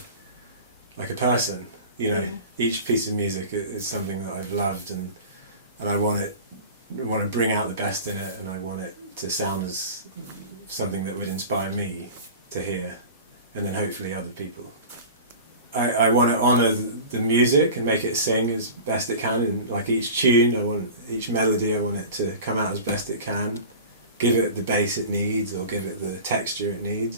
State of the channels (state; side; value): inverted; both; correlation -0.36